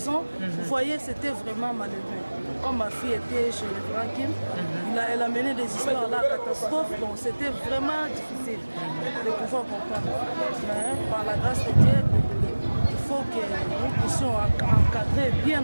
Vous voyez, c'était vraiment malheureux. Comme ma fille était chez le grand Kim, elle a mené des histoires là, catastrophes, donc c'était vraiment difficile de pouvoir comprendre. Mais par la grâce de Dieu, il faut que nous puissions encadrer bien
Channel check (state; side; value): inverted; both; correlation -1.00